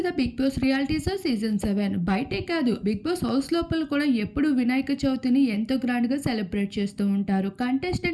the Bigg Boss reality show season 7. బయటే కాదు, బిగ్ బాస్ హౌస్ లోపల కూడా ఎప్పుడు వినాయక చవితిని ఎంతో గ్రాండ్గా సెలబ్రేట్ చేస్తూ ఉంటారు.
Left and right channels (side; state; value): both; identical; correlation 1.00